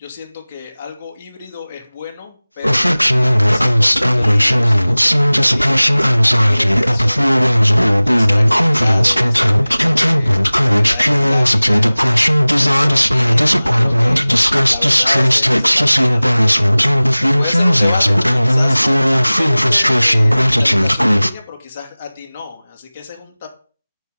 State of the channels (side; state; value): both; inverted; correlation -0.99